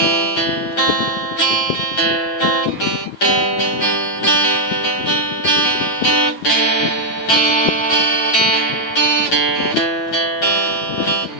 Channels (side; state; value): right; late; 9.2 ms